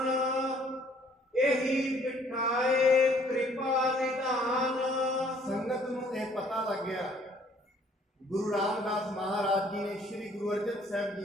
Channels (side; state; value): both; normal; correlation 0.60